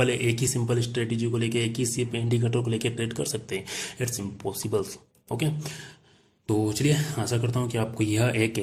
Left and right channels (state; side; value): identical; both; correlation 1.00